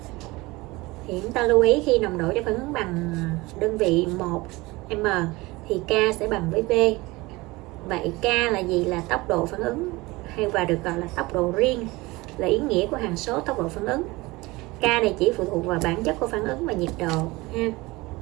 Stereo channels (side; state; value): left; quieter; 21.9 dB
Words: Thì chúng ta lưu ý khi nồng độ cho phản ứng bằng đơn vị 1m thì K sẽ bằng với V. Vậy K là gì? Là tốc độ phản ứng hay và được gọi là tốc độ riêng, là ý nghĩa của hằng số tốc độ phản ứng. K này chỉ phụ thuộc vào bản chất của phản ứng và nhiệt độ ha.